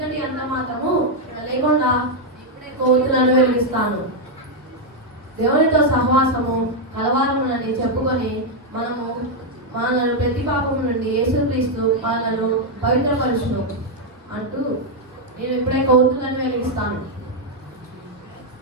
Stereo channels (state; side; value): normal; both; correlation 0.00